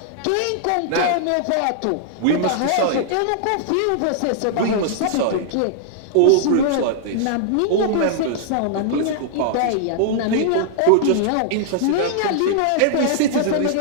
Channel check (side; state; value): both; different; correlation -0.01